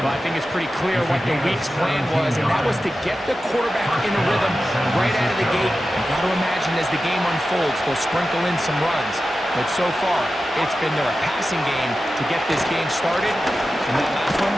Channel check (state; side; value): normal; both; correlation 0.93